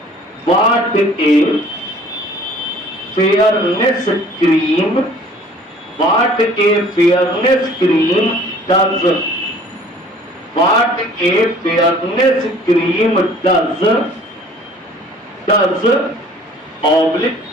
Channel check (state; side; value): normal; both; correlation 0.52